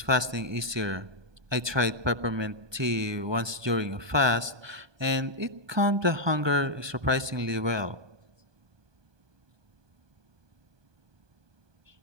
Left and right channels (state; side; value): late; left; 1.2 ms